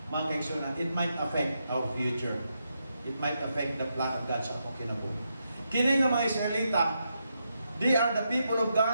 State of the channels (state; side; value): inverted; both; correlation -0.83